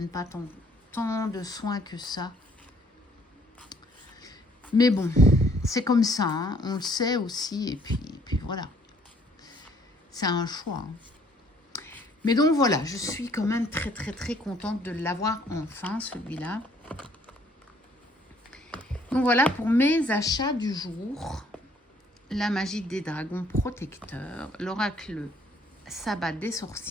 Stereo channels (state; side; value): normal; both; correlation 0.62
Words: pas tant de soin que ça. Mais bon, c'est comme ça, hein. On le sait aussi, et puis voilà. C'est un choix. Hein. Mais donc voilà, je suis quand même très très très contente de l'avoir enfin, celui-là. Donc voilà pour mes achats du jour. La magie des dragons protecteurs, l'oracle sabbat des